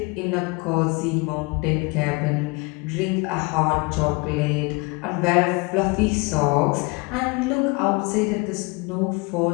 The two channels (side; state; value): right; quieter; 28.1 dB